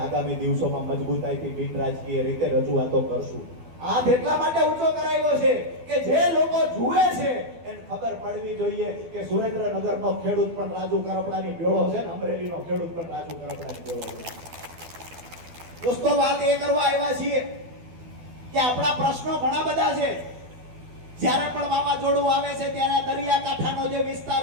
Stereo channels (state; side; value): late; left; 12 ms